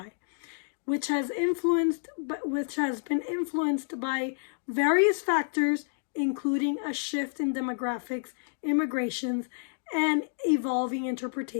Which has been influenced by various factors, including a shift in demographics, immigrations, and evolving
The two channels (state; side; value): silent; right; digital silence